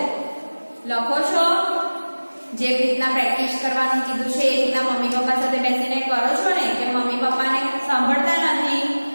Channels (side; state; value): both; inverted; correlation -1.00